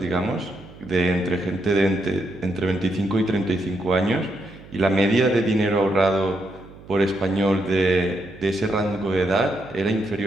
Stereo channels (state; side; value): noise; right; hum, 20 dB below the sound